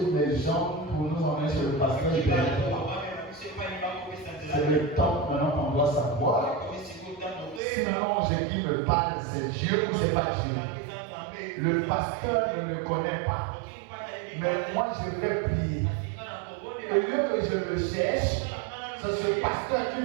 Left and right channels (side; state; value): left; drops out; at 7.6 s